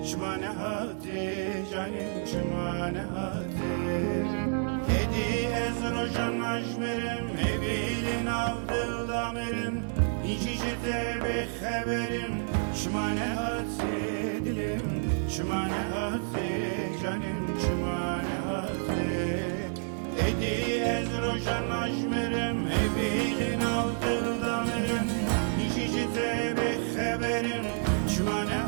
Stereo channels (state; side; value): silent; left; 58 dB below the other